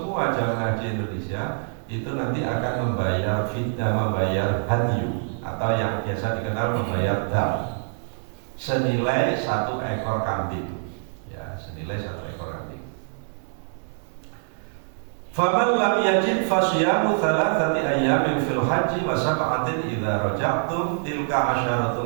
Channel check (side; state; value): left; silent; digital silence